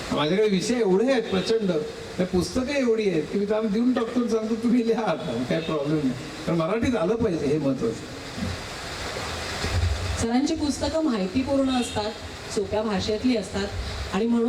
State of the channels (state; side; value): identical; both; correlation 1.00